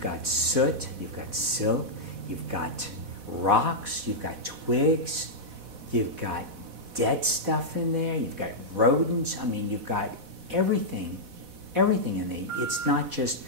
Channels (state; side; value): late; left; 4.1 ms